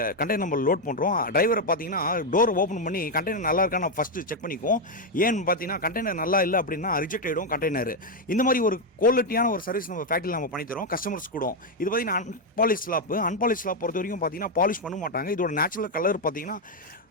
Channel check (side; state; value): both; normal; correlation 0.03